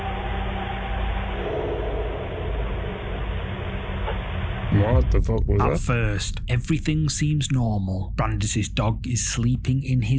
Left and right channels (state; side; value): identical; both; correlation 1.00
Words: What the fuck was that? At first, everything seems normal. Brandis's dog is sleeping in